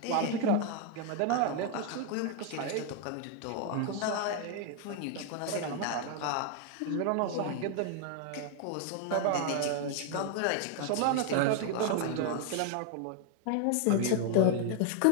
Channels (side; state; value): both; different; correlation 0.00